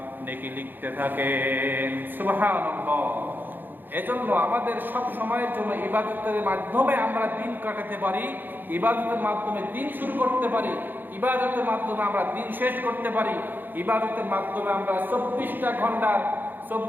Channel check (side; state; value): left; late; 0.091 ms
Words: নেকি লিখতে থাকেন। সুবহানাল্লাহ। এজন্য আমাদের সব সময়ের জন্য ইবাদতের মাধ্যমে আমরা দিন কাটাতে পারি, ইবাদতের মাধ্যমে দিন শুরু করতে পারি, ইবাদতের মাধ্যমে আমরা দিন শেষ করতে পারি, ইবাদতের মাধ্যমে আমরা 24টা